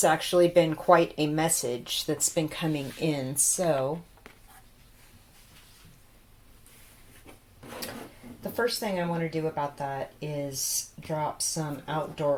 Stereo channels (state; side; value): identical; both; correlation 1.00